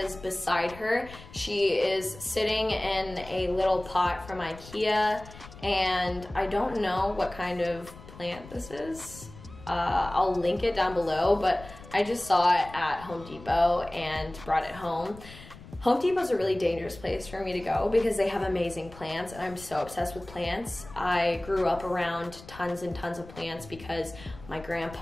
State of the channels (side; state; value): left; noise; rumble, 18 dB below the sound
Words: is beside her. She is sitting in a little pot from IKEA, and I don't know what kind of plant this is. I'll link it down below, but I just saw it at Home Depot and brought it home. Home Depot is a really dangerous place for me to go because they have amazing plants and I'm so obsessed with plants. I grew up around tons and tons of plants because my